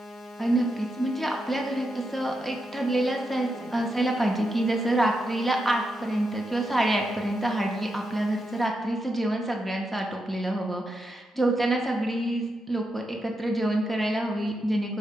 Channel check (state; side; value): normal; both; correlation 0.85